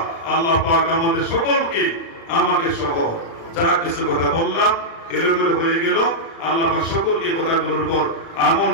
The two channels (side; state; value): right; late; 36 ms